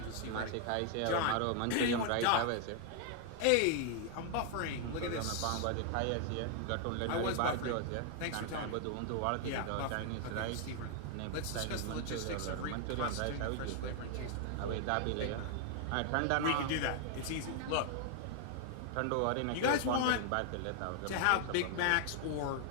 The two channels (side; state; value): both; different; correlation 0.00